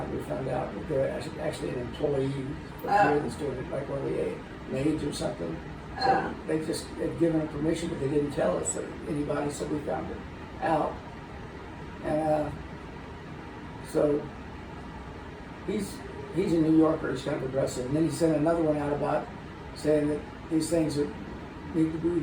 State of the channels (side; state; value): both; identical; correlation 1.00